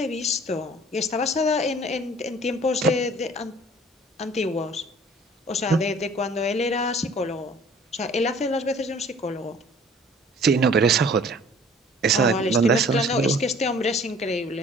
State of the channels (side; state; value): both; normal; correlation 0.51